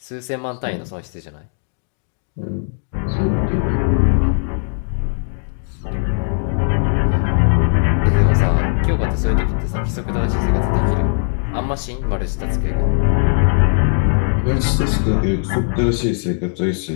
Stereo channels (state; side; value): silent; right; digital silence